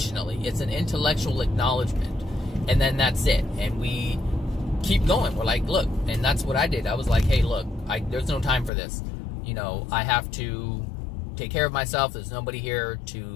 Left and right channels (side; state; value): right; drops out; at 8.7 s